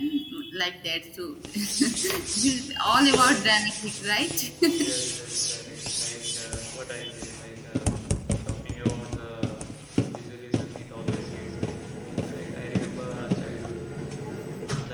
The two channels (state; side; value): identical; both; correlation 1.00